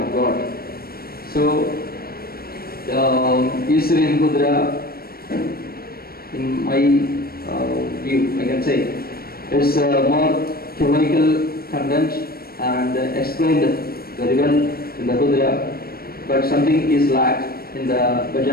God. So, East Syrian Hudra, in my view, I can say, it's more theological content and explained very well in the Hudra, but something is lacked in the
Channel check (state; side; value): late; right; 0.44 ms